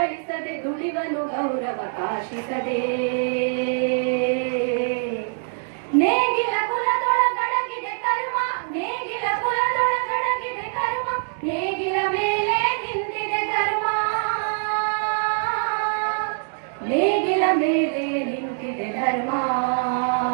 ದುಡಿವನು ಗೌರವ ಕಾಶಿಸದೆ. ನೇಗಿಲ ಕುಲದೊಳಗಡಗಿದೆ ಕರ್ಮ, ನೇಗಿಲ ಕುಲದೊಳಗಡಗಿದೆ ಕರ್ಮ, ನೇಗಿಲ ಮೇಲೆ ನಿಂತಿದೆ ಧರ್ಮ, ನೇಗಿಲ ಮೇಲೆ ನಿಂತಿದೆ ಧರ್ಮ.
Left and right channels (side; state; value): left; silent; digital silence